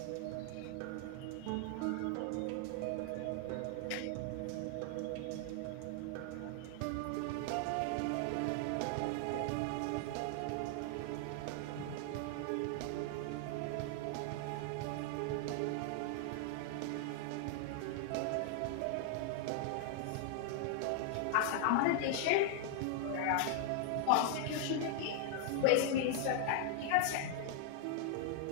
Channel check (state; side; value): different; both; correlation 0.00